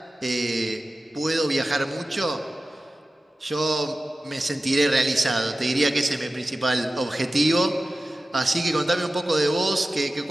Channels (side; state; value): both; normal; correlation 0.95